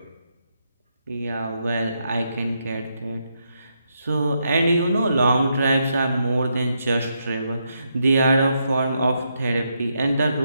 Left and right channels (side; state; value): both; inverted; correlation -0.80